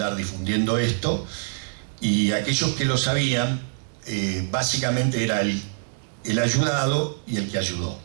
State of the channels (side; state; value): left; silent; digital silence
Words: difundiendo esto, y aquellos que lo sabían, básicamente era el ayudado y el que ayudó.